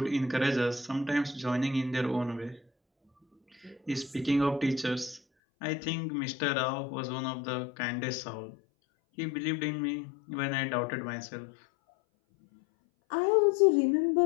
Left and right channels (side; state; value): right; drops out; at 5.2 s